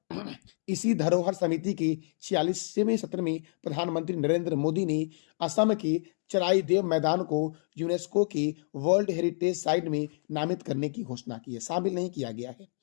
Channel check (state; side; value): silent; right; 59 dB below the other